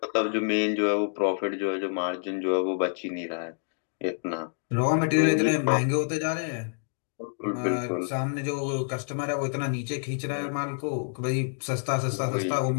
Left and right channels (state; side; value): silent; right; digital silence